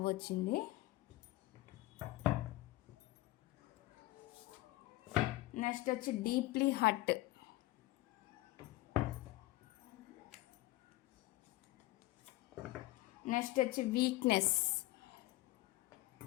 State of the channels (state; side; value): quieter; right; 18.1 dB